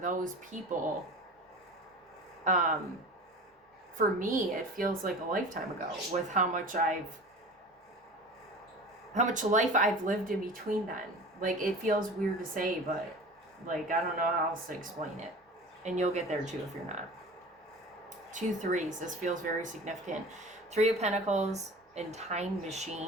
people, for me, it feels like a lifetime ago with how much life I've lived in between then. Like, it feels weird to say, but like, I don't know how else to explain it. And you'll get there too if you're not. 2 3s. This feels very significant. 3 of Pentacles and Time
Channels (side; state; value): both; normal; correlation 0.37